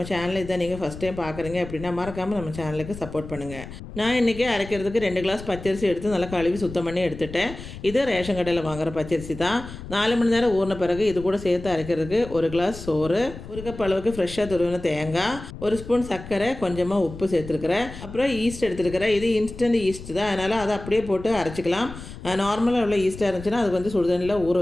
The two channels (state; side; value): noise; left; rumble, 13 dB below the sound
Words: சேனலை இதை நீங்கள் ஃபஸ்ட் டைம் பார்க்குறீங்க அப்படின்னா மறக்காமல் நம்ம சேனலுக்கு சப்போர்ட் பண்ணுங்கள். நான் இன்றைக்கி அரைக்கிறதுக்கு 2 கிளாஸ் பச்சரிசி எடுத்து நல்லா கழுவி சுத்தம் பண்ணி எடுத்துட்டேன். இது ரேஷன் கடையில் வாங்குகிற பச்சரிசி தான். 4 மணி நேரம் ஊறின பிறகு இது கூட சேர்த்து அரைக்கிறதுக்கு 1 கிளாஸ் சோறு, 1 கப் அளவுக்கு ஃப்ரெஷ்ஷாக துருவின தேங்காய், 1 ஸ்பூன் சர்க்கரை, கொஞ்சமாக உப்பு சேர்த்துருக்கிறேன். அப்புறம் ஈஸ்ட் எடுத்துருக்கிறேன். இது இன்ஸ்டன்ட் ஈஸ்ட் தான், அதனால் அதை அப்படியே போட்டு அரைச்சிக்கலாம். நார்மலாக உள்ள ஈஸ்ட்டாக இருந்துச்சுன்னா அது வந்து சுடுதண்ணியில் ஊற